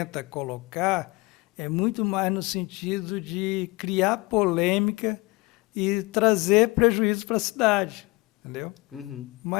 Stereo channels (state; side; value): quieter; right; 23.7 dB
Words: colocar é muito mais no sentido de criar polêmica e trazer prejuízo para a cidade, entendeu? Uhum.